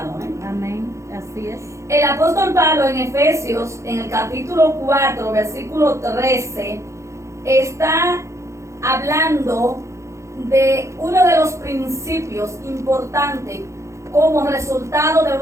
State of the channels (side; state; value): left; late; 0.14 ms